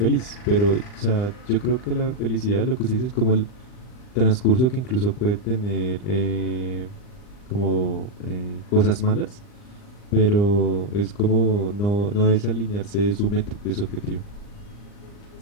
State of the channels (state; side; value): late; right; 39 ms